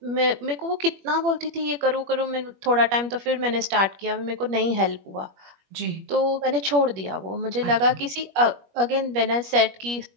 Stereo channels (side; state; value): left; late; 21 ms